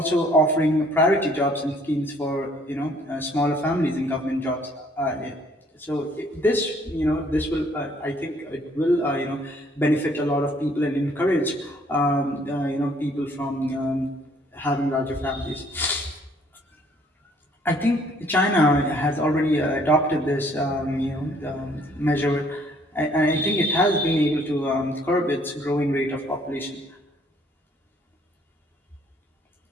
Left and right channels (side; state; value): both; normal; correlation 0.61